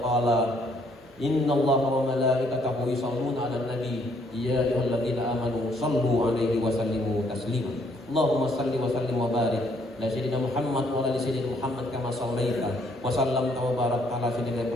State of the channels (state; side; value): normal; both; correlation 0.67